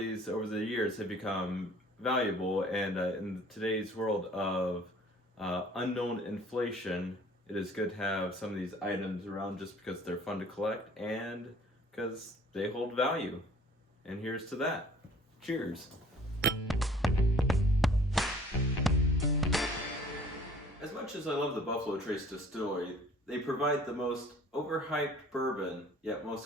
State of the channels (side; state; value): both; normal; correlation 0.52